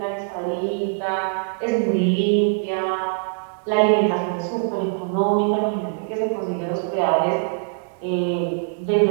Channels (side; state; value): left; silent; 64 dB below the other